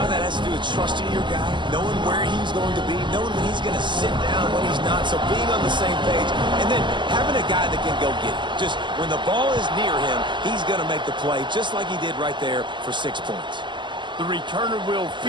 of that has to do with trusting your guy, knowing where he's going to be, knowing when he's going to sit down, when he's not, so being on the same page, and then having a guy that can go get it. Just when the ball is near him, he's going to make the play, just like he did right there for 6 points. The returner will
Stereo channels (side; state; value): left; late; 0.23 ms